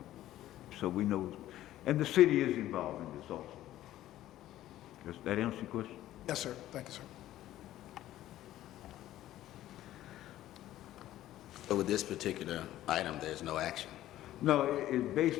So we know, and the city is involved in this also. Does that answer your question? Yes, sir. Thank you, sir. So with this particular item, there's no action. No, it's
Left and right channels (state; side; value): quieter; right; 13.9 dB